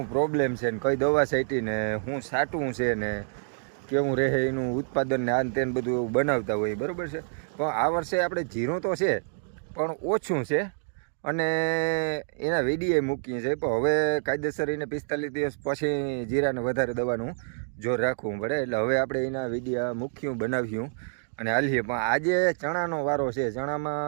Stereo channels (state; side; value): silent; left; digital silence